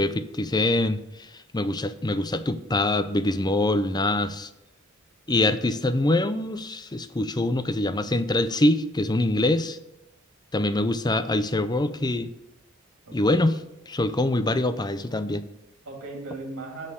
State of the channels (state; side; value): normal; both; correlation 0.64